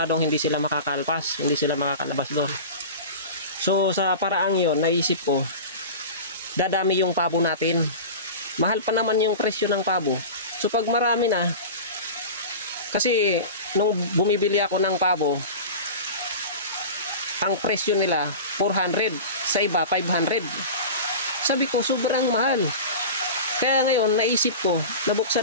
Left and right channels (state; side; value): inverted; both; correlation -0.31